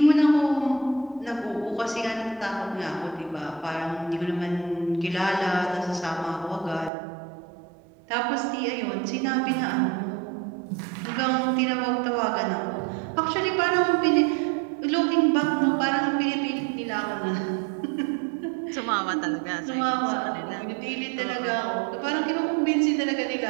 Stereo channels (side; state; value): left; drops out; at 6.9 s